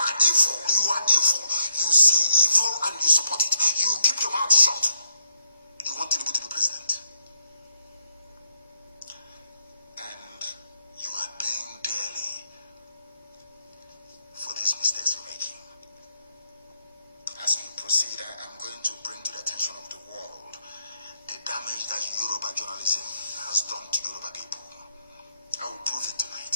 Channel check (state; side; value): inverted; both; correlation -0.78